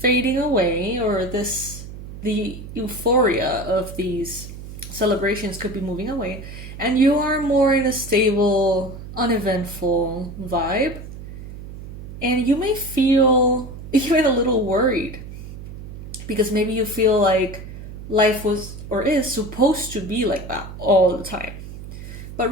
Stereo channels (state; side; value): noise; right; hum, 12 dB below the sound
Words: away, or the euphoria of these celebrations could be moving away, and you are more in a stable, uneventful vibe. And you may feel even a little worried because maybe you feel like life was or is supposed to be like that all the time. But